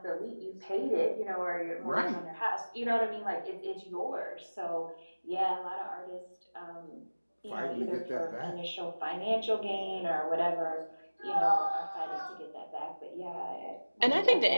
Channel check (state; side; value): inverted; both; correlation -1.00